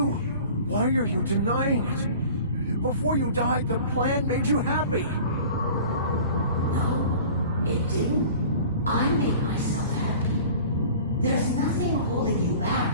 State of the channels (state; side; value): inverted; both; correlation -0.43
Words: Why are you denying it? Before you died, the plan made you happy. No, it didn't. I made myself happy. There's nothing holding you back